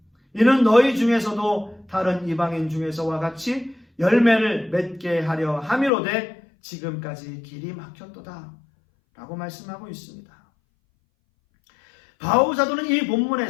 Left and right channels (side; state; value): right; drops out; at 5.9 s